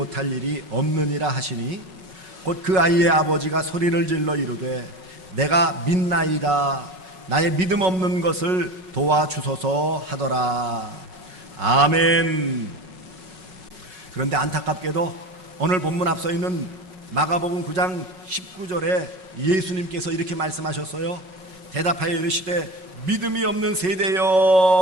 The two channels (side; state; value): left; late; 5.4 ms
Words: 일이 없느니라 하시니, 곧 그 아이의 아버지가 소리를 질러 이르되 내가 믿나이다, 나의 믿음 없는 것을 도와주소서 하더라. 아멘. 그런데 안타깝게도 오늘 본문 앞서 있는 마가복음 9장 19절에 예수님께서 이렇게 말씀하셨어요. 대답하여 이르시되 믿음이 없는